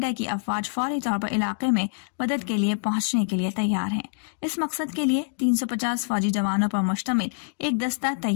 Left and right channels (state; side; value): silent; right; digital silence